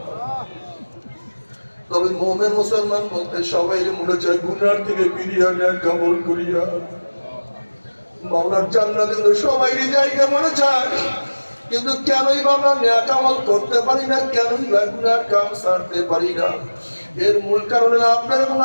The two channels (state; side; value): inverted; both; correlation -1.00